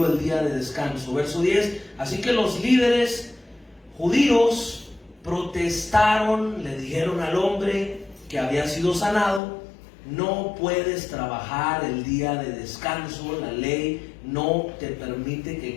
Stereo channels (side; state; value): right; drops out; at 9.4 s